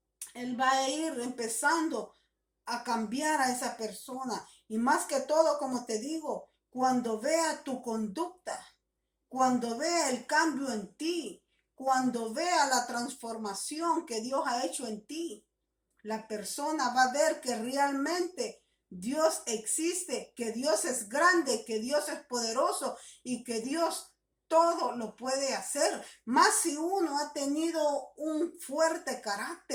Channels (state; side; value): identical; both; correlation 1.00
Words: Él va a ir empezando a cambiar a esa persona. Y más que todo, como te digo, cuando vea tu conducta, cuando vea el cambio en ti, cuando vea la transformación que Dios ha hecho en ti, la persona va a ver que realmente Dios existe, que Dios es grande, que Dios es poderoso y que Dios todo lo puede hacer. Más si uno ha tenido un fuerte